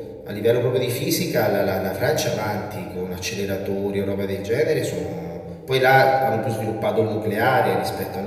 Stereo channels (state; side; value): identical; both; correlation 1.00